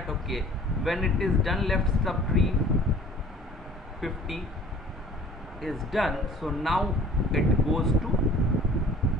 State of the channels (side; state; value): both; normal; correlation 0.50